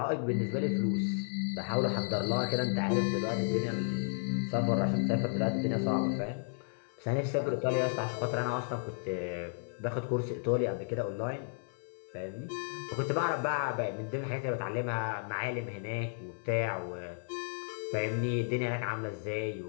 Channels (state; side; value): silent; right; 56 dB below the other